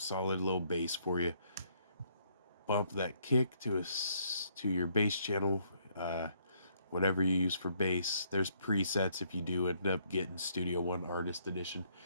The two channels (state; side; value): inverted; both; correlation -0.69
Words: low bass for you. Bump that kick to your bass channel, whatever you use for bass. There's presets if you do end up getting Studio One Artist Edition,